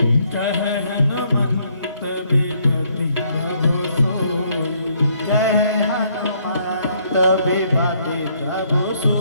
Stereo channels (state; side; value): inverted; both; correlation -0.69